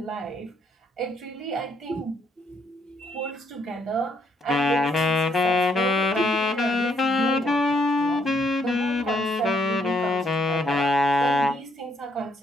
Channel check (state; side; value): normal; both; correlation 0.72